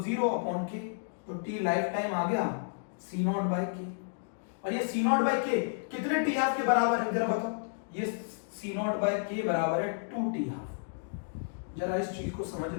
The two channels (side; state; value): right; silent; digital silence